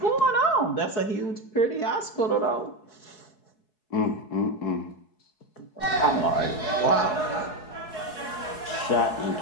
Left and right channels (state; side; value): late; right; 4.7 ms